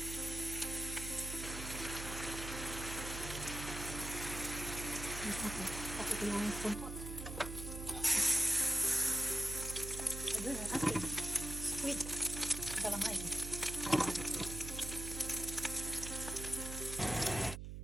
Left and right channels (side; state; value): right; noise; hum, 7 dB below the sound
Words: Tapos ito yung spoon pot. Ayun ang ating squid. Galamay.